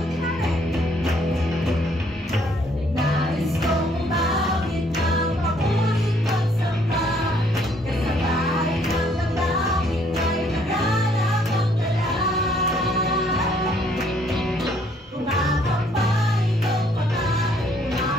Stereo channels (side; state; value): both; normal; correlation 0.65